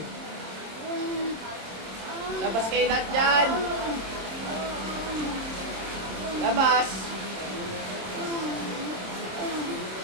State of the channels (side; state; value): left; late; 26 ms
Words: Labas kayo lahat dyan. Labas.